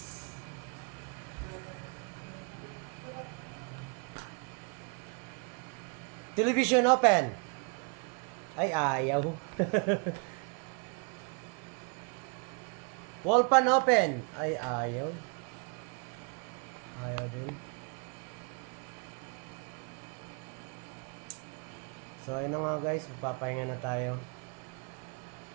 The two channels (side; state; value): left; quieter; 36.3 dB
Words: Television open. Ay, ayaw. Wall pan open. Ay, ayaw. Ayaw din. So, ayun na nga guys. Magpapahinga na tayo.